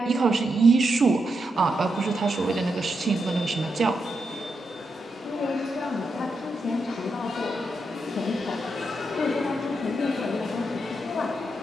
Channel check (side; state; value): both; normal; correlation 0.84